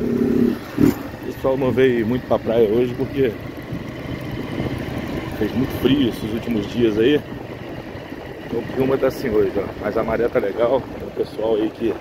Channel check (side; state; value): both; identical; correlation 1.00